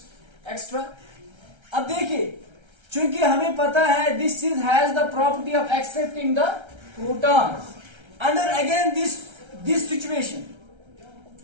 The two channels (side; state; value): left; late; 1.3 ms